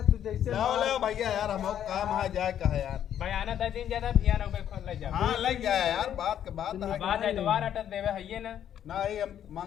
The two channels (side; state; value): right; quieter; 10.1 dB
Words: तू जैसे लाओ लाओ भैया यार हम काम है जाए कहा यार। बयाना 10 दिन ज्यादा भिया ना उबे खोल ले जा। हाँ लग जाए यार बात के बात है। बाद है दोबारा अटक देवे है ना। ना ही हम